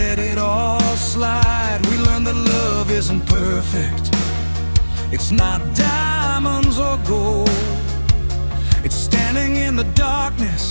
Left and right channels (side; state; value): both; inverted; correlation -1.00